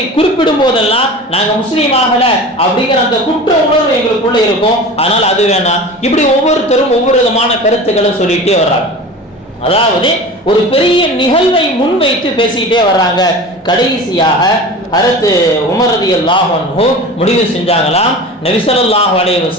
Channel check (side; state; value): both; normal; correlation 0.35